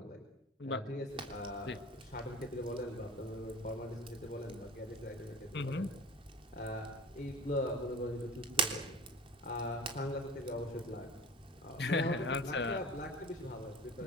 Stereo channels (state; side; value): normal; both; correlation 0.37